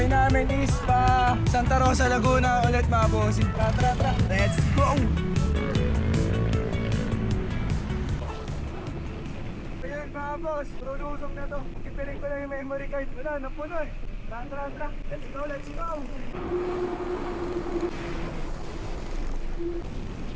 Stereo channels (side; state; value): both; identical; correlation 1.00